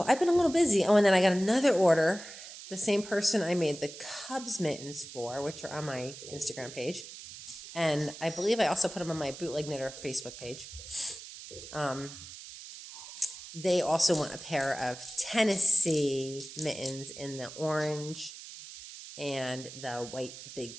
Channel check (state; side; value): noise; right; hiss, 13 dB below the sound